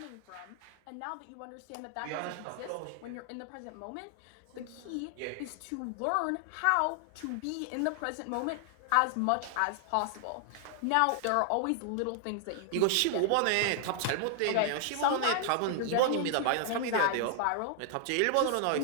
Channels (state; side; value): different; both; correlation 0.00